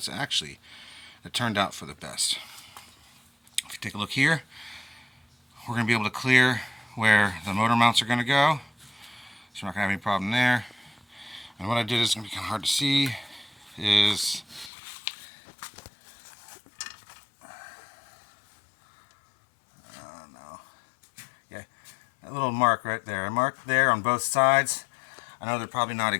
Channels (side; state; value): right; drops out; at 14.7 s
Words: actually, it turned out for the best. If you take a look here, we're going to be able to clear where the motor mounts are going to go, so we're not going to have any problem there. And what I did is going to be kind of hard to see is that little mark right there. I marked there on both sides. I know they're probably not